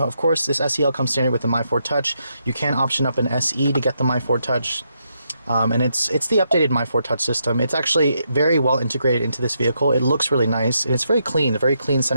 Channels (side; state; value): both; inverted; correlation -0.80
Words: course, this SEL comes standard with the My Ford Touch. You can option up an SE to get the My Ford Touch, and it's the updated My Ford Touch system. It's actually very well integrated into this vehicle. It looks really nice, and it's very clean, a very clean